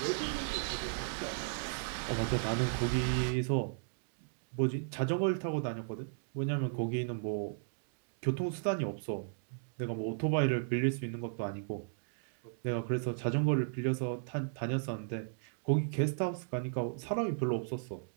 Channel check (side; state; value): left; silent; digital silence